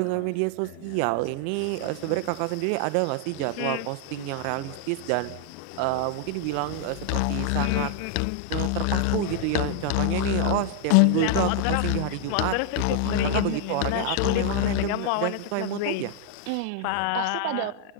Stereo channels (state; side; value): different; both; correlation 0.00